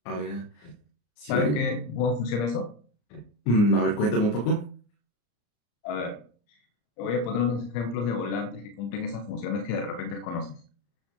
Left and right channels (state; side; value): late; right; 34 ms